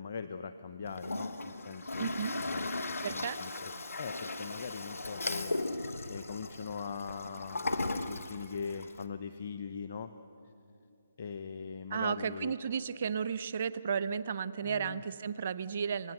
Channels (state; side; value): inverted; both; correlation -0.75